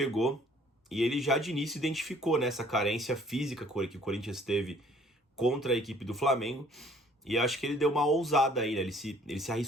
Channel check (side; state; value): both; normal; correlation 0.57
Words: e ele já de início identificou, né, essa carência física que o Corinthians teve contra a equipe do Flamengo e acho que ele deu uma ousada aí, né? Ele se